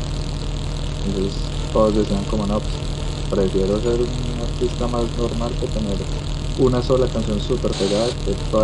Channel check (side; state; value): both; identical; correlation 1.00